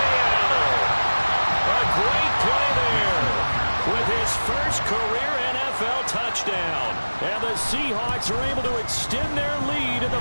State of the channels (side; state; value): both; inverted; correlation -1.00